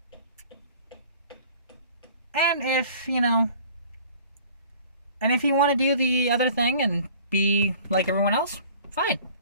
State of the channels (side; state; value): both; inverted; correlation -0.49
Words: And if you want to do the other thing and be like everyone else, fine.